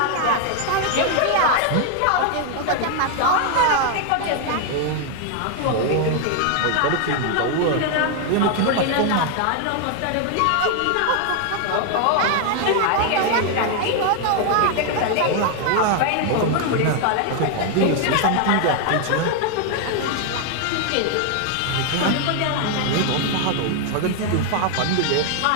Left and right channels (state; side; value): different; both; correlation 0.00